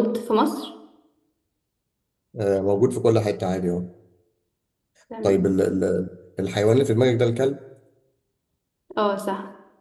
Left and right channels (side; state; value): both; identical; correlation 1.00